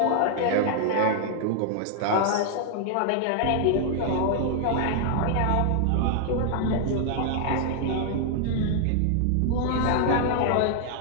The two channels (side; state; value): both; different; correlation 0.00